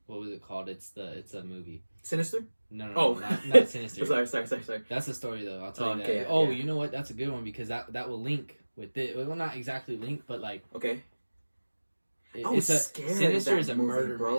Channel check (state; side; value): inverted; both; correlation -1.00